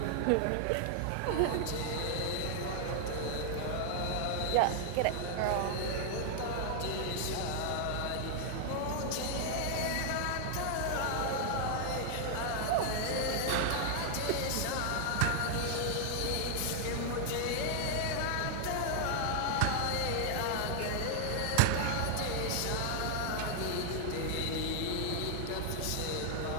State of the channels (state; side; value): different; both; correlation 0.00